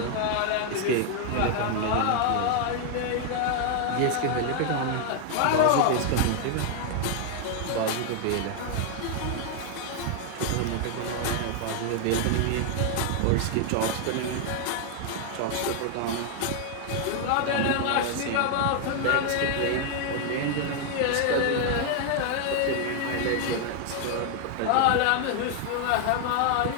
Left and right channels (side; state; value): both; different; correlation 0.00